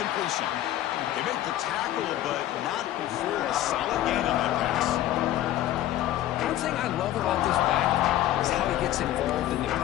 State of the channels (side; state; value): right; quieter; 13.5 dB